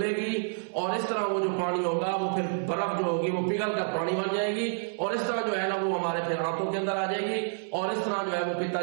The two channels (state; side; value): silent; left; 59 dB below the other